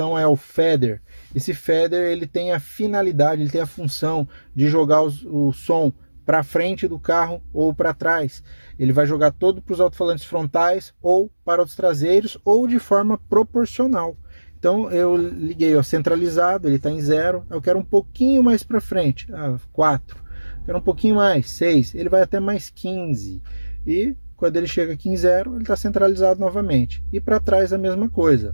é o feather. Esse feather, ele tem a finalidade, ele tem a função de jogar o som para frente do carro ou para trás. Ele vai jogar todo para os alto-falantes frontais ou para os traseiros ou de forma proporcional. Então eu liguei, ó, centralizado, ele está em 0. Eu quero um pouquinho mais para frente, 4. Quero um pouquinho mais, 6. Ele vai até mais 15. E quando ele chega aqui em 0, ele está centralizado novamente. E para trás a mesma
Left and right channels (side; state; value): both; inverted; correlation -1.00